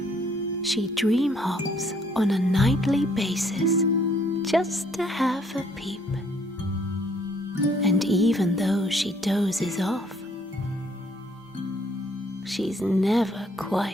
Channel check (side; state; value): both; normal; correlation 0.64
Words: She dream hops on a nightly basis just to have a peep. And even though she dozes off, she's never